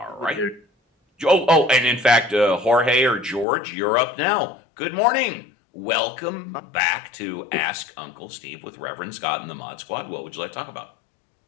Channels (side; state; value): right; drops out; at 3.5 s